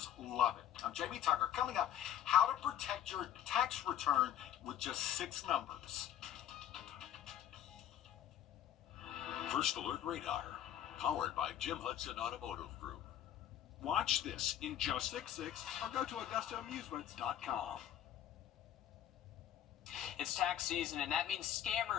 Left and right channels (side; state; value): right; quieter; 10.8 dB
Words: love it. I'm Jamie Tucker. Coming up, how to protect your tax return with just 6 numbers. First Alert Radar, powered by Jim Hudson Automotive Group. Watch this in just 6 or go to AugustaAmusements.com. It's tax season, and that means